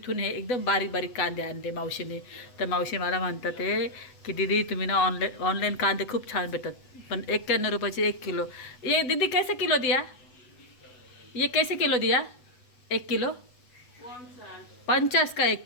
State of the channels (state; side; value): late; right; 8.1 ms